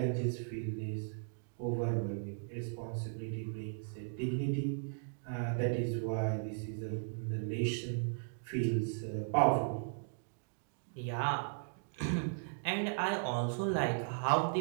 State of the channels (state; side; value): silent; left; digital silence